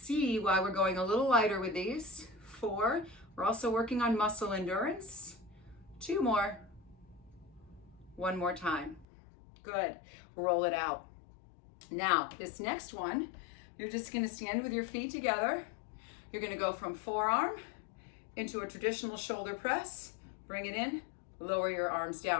why we're going a little lighter with these. 4. We're also working on muscle endurance. 2 more. 1 more time. Good. Roll it out. Now, this next one, you're just going to stand with your feet together. You're going to go from forearm into a traditional shoulder press. Bring it in. Lower your arms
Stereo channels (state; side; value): drops out; right; at 9.1 s